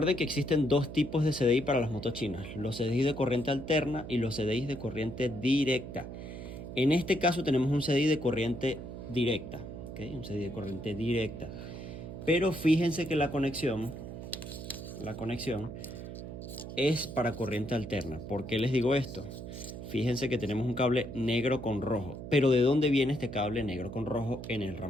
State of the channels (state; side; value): noise; right; hum, 9 dB below the sound